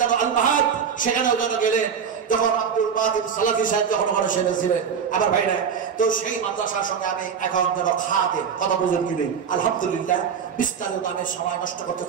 আল মাহাদ, সেখানেও যেন গেলেন, যখন আব্দুল বাদিন সালাফি সাহেব যখন ওখানে সেরেছিলেন। আবার ভাইরা, তো সেই মাদ্রাসার সঙ্গে আমি এখন যেন খাতে কথা বুঝেন কি নেই, আলহামদুলিল্লাহ। বিস্তারিত আমি সময় নষ্ট করতে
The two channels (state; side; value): quieter; left; 7.0 dB